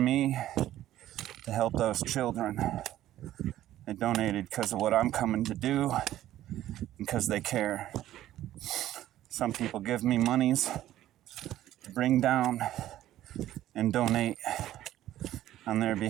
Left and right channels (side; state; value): left; quieter; 13.4 dB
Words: to help those children. They donated because of what I'm coming to do, because they care. Some people give me monies to bring down and donate on their